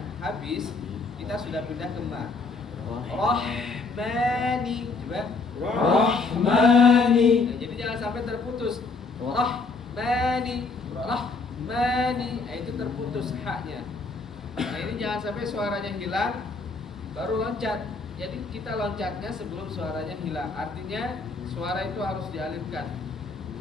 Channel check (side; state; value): right; quieter; 4.0 dB